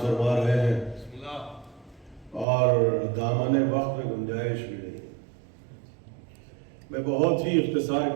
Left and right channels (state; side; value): drops out; left; at 2.5 s